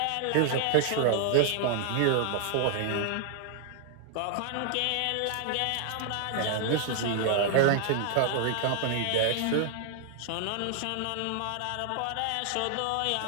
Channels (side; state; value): both; different; correlation 0.00